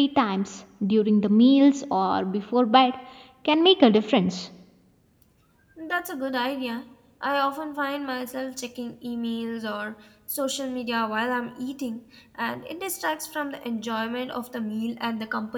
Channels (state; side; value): identical; both; correlation 1.00